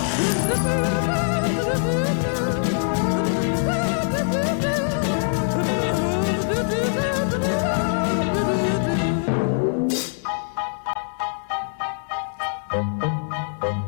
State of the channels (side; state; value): right; silent; digital silence